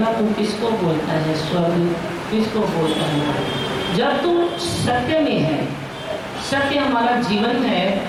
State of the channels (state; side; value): identical; both; correlation 1.00